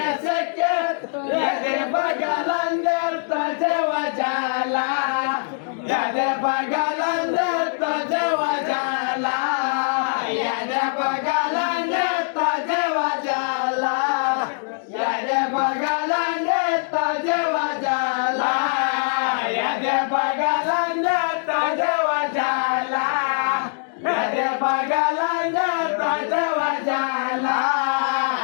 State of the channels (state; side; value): silent; right; digital silence